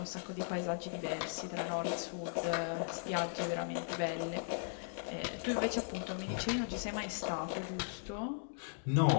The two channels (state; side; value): silent; right; digital silence